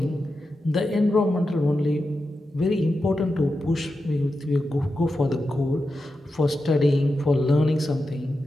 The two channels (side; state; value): both; normal; correlation 0.90